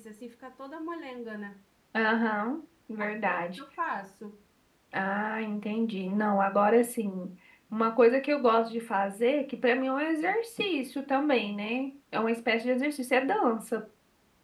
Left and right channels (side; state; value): both; identical; correlation 1.00